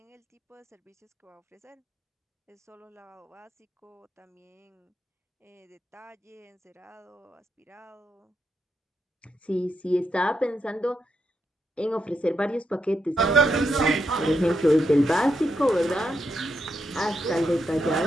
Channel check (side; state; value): both; normal; correlation 0.82